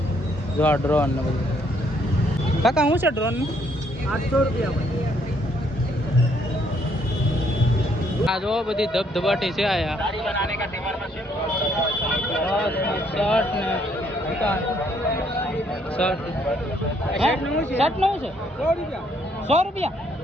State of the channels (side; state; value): both; normal; correlation 0.69